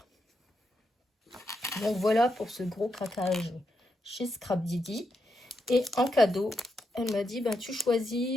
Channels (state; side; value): normal; both; correlation 0.83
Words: Donc voilà pour ce gros craquage chez Scrap Didi. Et en cadeau, elle m'a dit, ben, tu